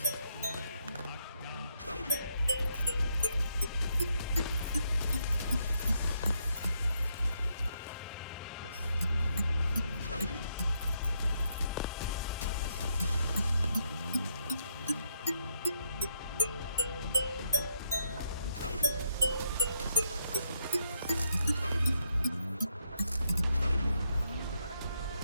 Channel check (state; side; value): inverted; both; correlation -0.76